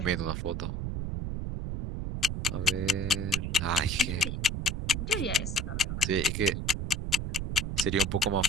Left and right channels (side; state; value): right; noise; rumble, 3 dB below the sound